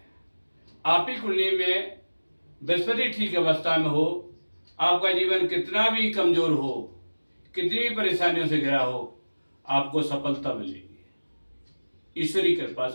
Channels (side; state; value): both; inverted; correlation -1.00